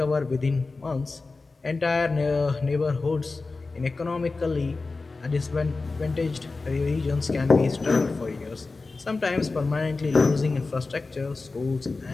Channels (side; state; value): right; quieter; 3.8 dB